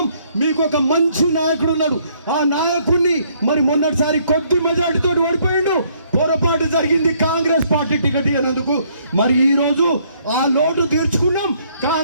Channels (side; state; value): both; inverted; correlation -0.66